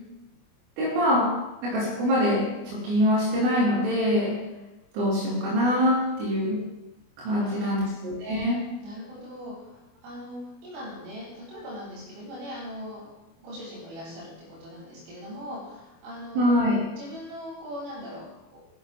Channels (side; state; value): left; late; 24 ms